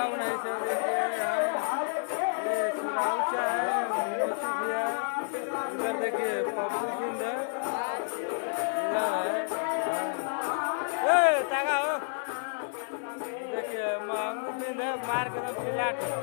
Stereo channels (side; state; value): right; silent; digital silence